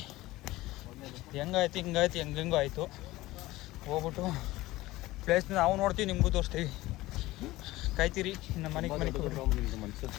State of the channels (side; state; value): right; quieter; 18.1 dB